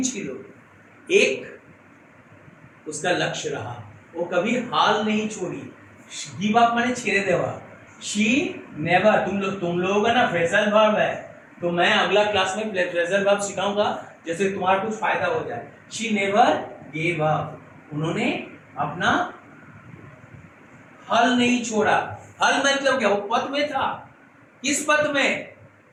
ছিল, एक उसका लक्ष्य रहा, वो कभी हाल नहीं छोड़ी. गिव अप माने छेड़े देवा. शी नेवर, तुम लोगों का ना फ्रेजल वर्ब है, तो मैं अगला क्लास में फ्रेजल वर्ब सिखाऊंगा जैसे तुम्हारा कुछ फायदा हो जाए. शी नेवर गेव अप, उन्होंने अपना हल नहीं छोड़ा. हल मतलब क्या, वो पथ में था. किस पथ में,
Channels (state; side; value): identical; both; correlation 1.00